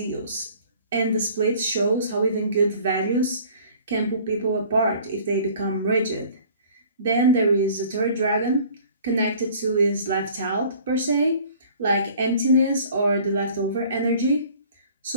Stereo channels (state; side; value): inverted; both; correlation -0.51